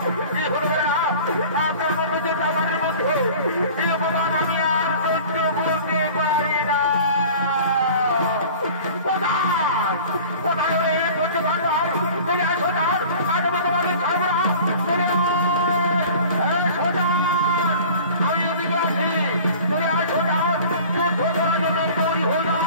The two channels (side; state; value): both; inverted; correlation -0.43